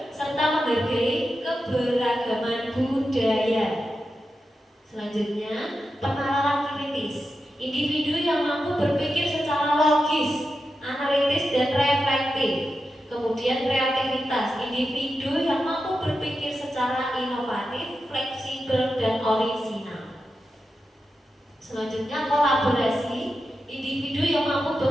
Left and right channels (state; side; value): normal; both; correlation 0.89